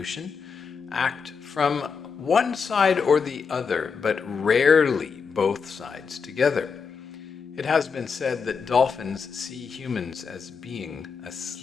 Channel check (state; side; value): quieter; right; 5.7 dB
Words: act from one side or the other, but rarely both sides together. It has been said that dolphins see humans as being